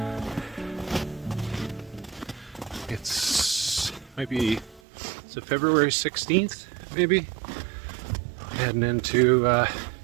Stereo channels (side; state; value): left; drops out; at 4.8 s